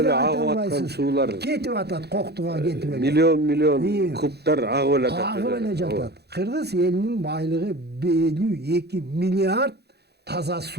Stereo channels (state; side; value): late; left; 0.48 ms